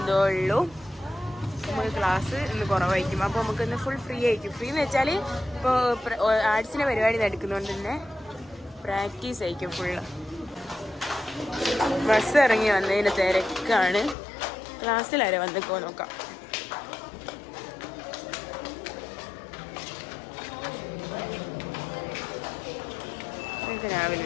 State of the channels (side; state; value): right; drops out; at 14.2 s